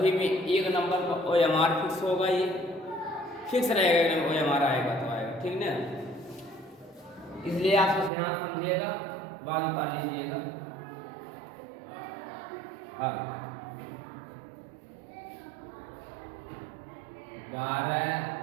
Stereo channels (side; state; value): left; drops out; at 8.1 s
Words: में 1 नंबर का OMR फिक्स होगा, ये फिक्स रहेगा, OMR आएगा तो आएगा, ठीक ना। इसलिए आप ध्यान समझिएगा, बात पा लीजिएगा। हाँ 12